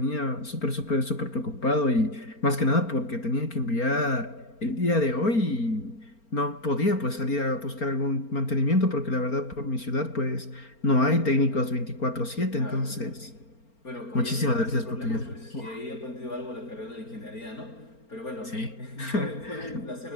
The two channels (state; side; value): late; right; 4.4 ms